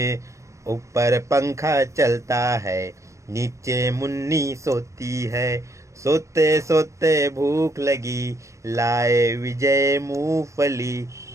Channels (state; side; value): late; left; 0.15 ms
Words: ऊपर पंखा चलता है, नीचे मुन्नी सोती है। सोते सोते भूख लगी, लाए विजय मूंगफली।